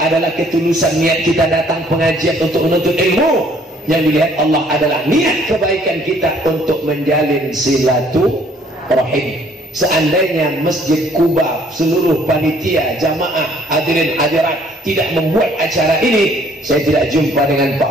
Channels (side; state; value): both; normal; correlation 0.61